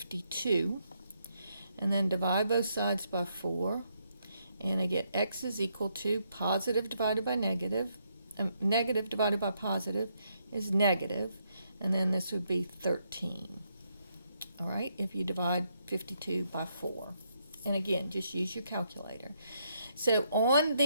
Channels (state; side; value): inverted; both; correlation -0.76